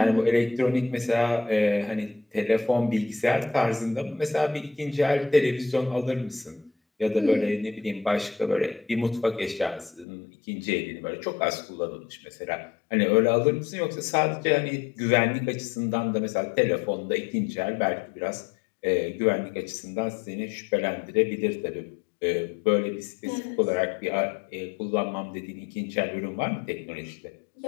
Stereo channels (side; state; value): right; drops out; at 10.1 s